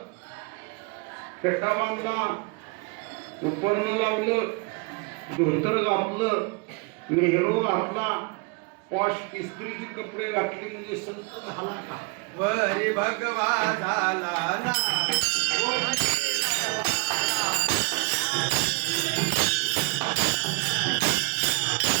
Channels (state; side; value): quieter; left; 31.9 dB